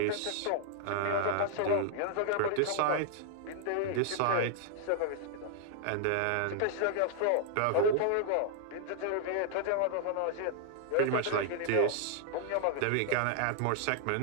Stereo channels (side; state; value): both; different; correlation -0.01